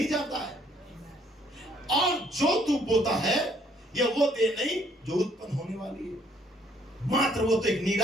जाता है, और जो तू बोता है यह वो देह नहीं जो उत्पन्न होने वाली है, मात्र वो तो एक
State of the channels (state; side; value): normal; both; correlation 0.65